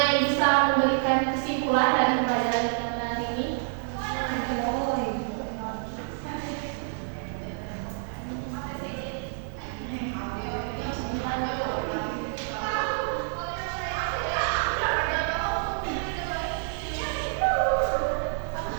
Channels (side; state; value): left; silent; 59 dB below the other